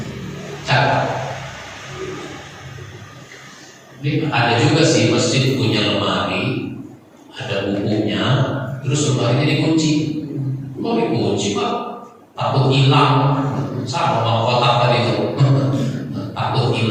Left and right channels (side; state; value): both; identical; correlation 1.00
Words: Catat. Ini ada juga sih masjid punya lemari, ada bukunya, terus lemarinya dikunci. Kok dikunci, Pak? Takut hilang. Sama mau kotak tadi itu. Takut